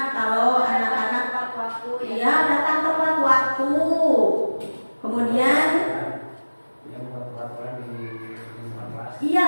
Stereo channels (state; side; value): inverted; both; correlation -1.00